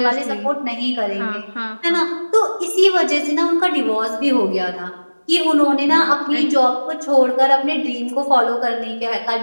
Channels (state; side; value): inverted; both; correlation -1.00